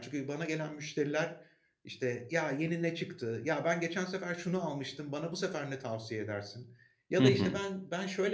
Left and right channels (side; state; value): both; identical; correlation 1.00